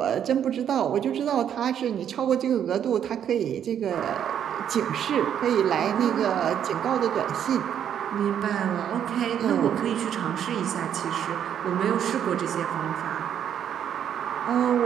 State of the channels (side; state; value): left; quieter; 9.3 dB